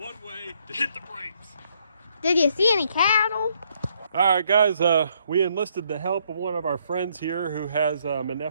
way to hit the brakes. Did you see any cattle? All right, guys, we enlisted the help of one of our friends here who has an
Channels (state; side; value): inverted; both; correlation -0.70